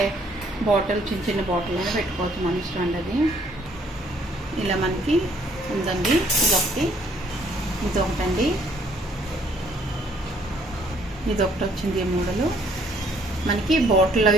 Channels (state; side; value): normal; both; correlation 0.64